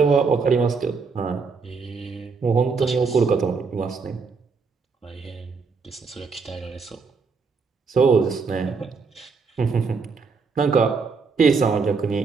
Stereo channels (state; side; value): quieter; left; 4.9 dB